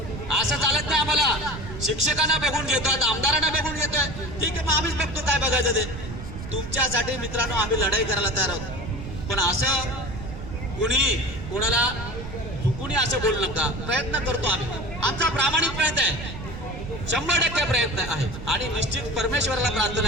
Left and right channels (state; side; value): noise; right; rumble, 10 dB below the sound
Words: असं चालत नाही आम्हाला. शिक्षकांना बघून घेतोय, आमदारांना बघून घेतोय. ठीक आहे, मग आम्हीच बघतो काय बघायचं ते. तुमच्यासाठी मित्रांनो आम्ही लढाई करायला तयार आहोत. पण असं कोणी कोणाला चुकून असं बोलू नका. प्रयत्न करतो आम्ही. आमचा प्रामाणिक प्रयत्न आहे. 100% प्रयत्न आहे. आणि निश्चित परमेश्वराला